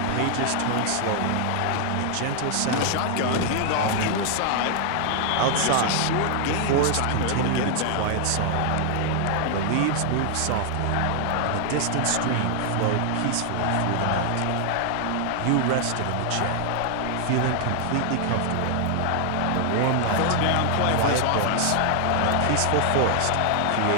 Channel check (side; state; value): both; different; correlation 0.00